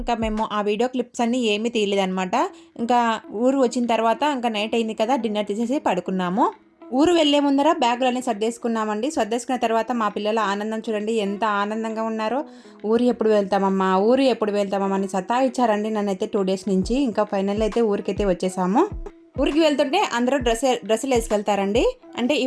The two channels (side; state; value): both; identical; correlation 1.00